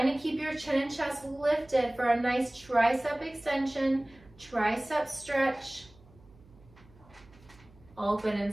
to keep your chin and chest lifted for a nice tricep extension, tricep stretch. Open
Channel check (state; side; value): noise; right; hum, 26 dB below the sound